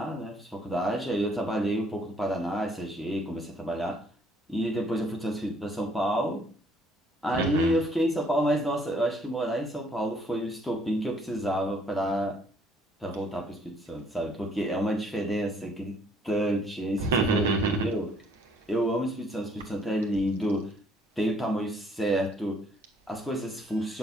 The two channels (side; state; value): both; normal; correlation 0.64